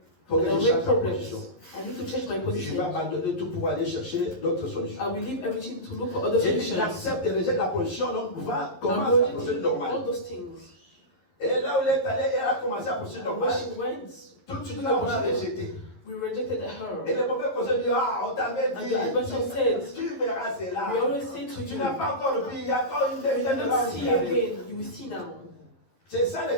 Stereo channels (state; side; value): late; right; 11 ms